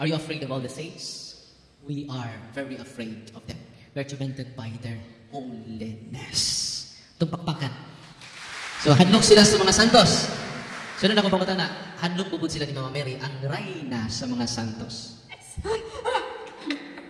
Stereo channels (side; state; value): both; identical; correlation 1.00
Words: Are you afraid of all the saints? We are very afraid of them. We're tormented by their holiness. Itong pakpakan. So, hadlok sila sa mga santos. So, na ako pangutan na, hadlok bubud sila ni Mama Mary, ang reyna sa mga santos.